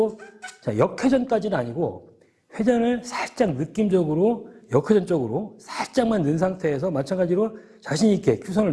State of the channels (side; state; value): both; identical; correlation 1.00